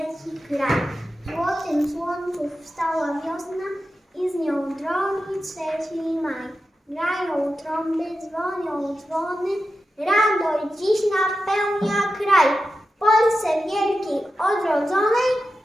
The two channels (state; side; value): normal; both; correlation 0.91